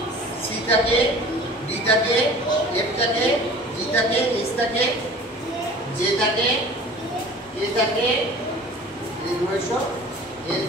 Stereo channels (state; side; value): normal; both; correlation 0.44